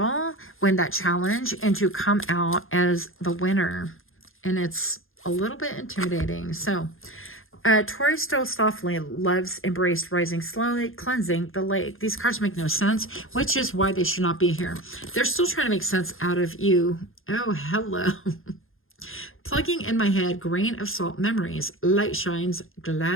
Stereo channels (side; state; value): right; late; 0.60 ms